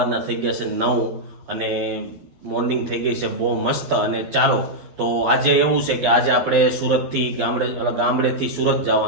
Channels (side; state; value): left; late; 12 ms